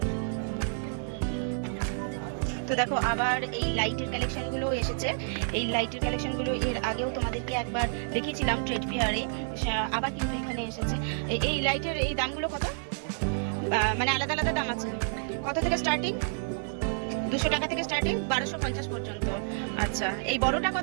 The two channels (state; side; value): silent; left; 58 dB below the other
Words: তো দেখো আবার এই লাইটের কালেকশনগুলো এসেছে। এই লাইটের কালেকশনগুলো এর আগেও তোমাদেরকে একবার দেখিয়েছিলাম ট্রেড ফেয়ারে, আবার কিন্তু এখানে এসেছে। এই লাইটের এই দামগুলো কত? মানে আলাদা আলাদা দাম আছে। কত থেকে স্টার্টিং? 200 টাকা থেকে স্টার্টিং, 1250 পর্যন্ত। আচ্ছা, এই বড়টা